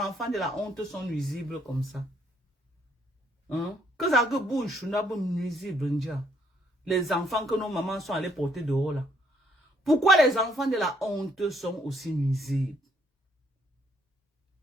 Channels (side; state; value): both; normal; correlation 0.69